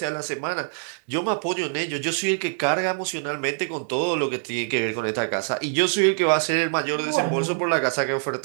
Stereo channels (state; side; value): silent; left; 62 dB below the other